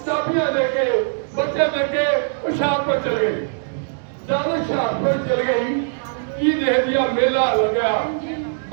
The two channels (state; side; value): silent; left; digital silence